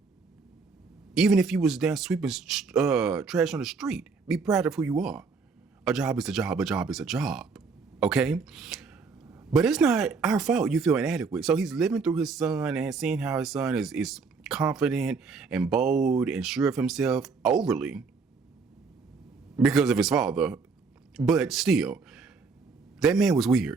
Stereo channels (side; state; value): left; quieter; 4.7 dB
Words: even if you was down sweeping trash on the street, be proud of who you are. A job is a job. A job is a job, okay? But it's not our fault you feel inadequate. So he's living through his son and seeing how his son is confident and bold and sure of himself overly because of his father. But still, that man was